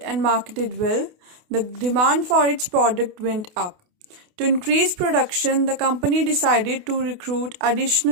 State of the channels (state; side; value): late; left; 28 ms